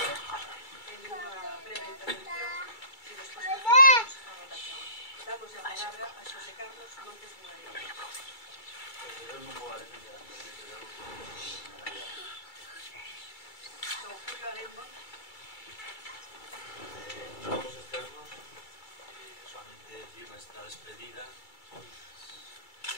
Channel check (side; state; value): right; late; 2.3 ms